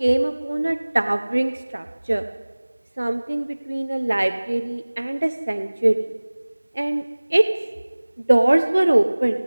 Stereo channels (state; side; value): inverted; both; correlation -1.00